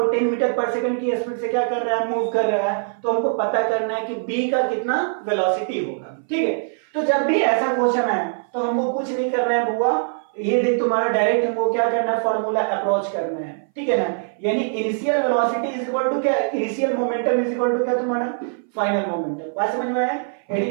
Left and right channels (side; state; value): left; silent; 60 dB below the other